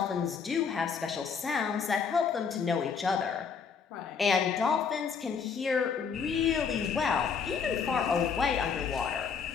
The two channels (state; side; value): quieter; right; 6.1 dB